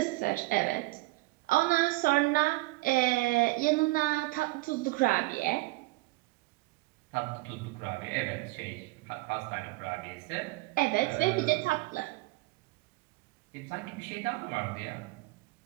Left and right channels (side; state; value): left; quieter; 21.6 dB